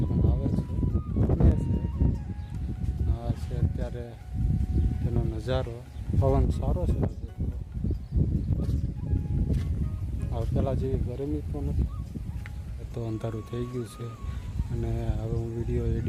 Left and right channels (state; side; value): identical; both; correlation 1.00